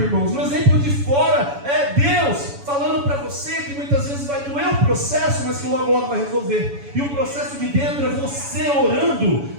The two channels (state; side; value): late; left; 7.1 ms